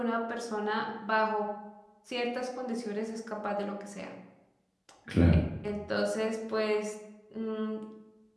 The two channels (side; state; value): both; identical; correlation 1.00